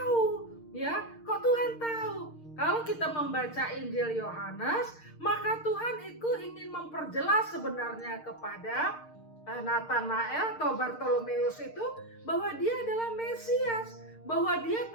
Ya, kok Tuhan tahu? Kalau kita membaca Injil Yohanes, maka Tuhan itu ingin memperjelas sebenarnya kepada Natanael atau Bartolomeus itu bahwa dia adalah Mesias, bahwa dia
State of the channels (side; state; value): right; late; 6.5 ms